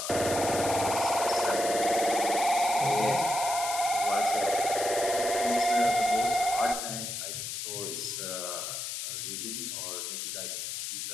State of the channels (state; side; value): noise; left; hiss, 5 dB below the sound